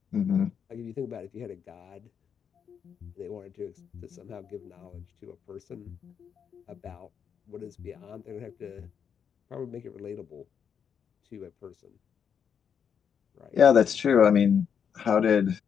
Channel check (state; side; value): quieter; right; 7.5 dB